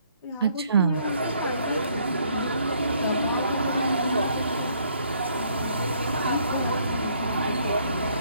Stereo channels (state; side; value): inverted; both; correlation -0.66